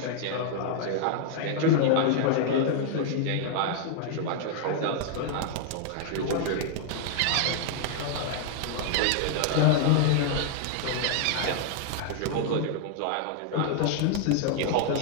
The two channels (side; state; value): both; different; correlation 0.00